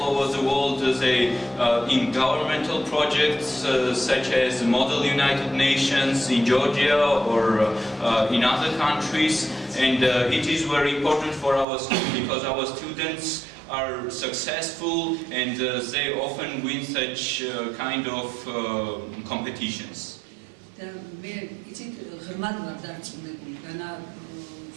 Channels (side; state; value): left; drops out; at 11.7 s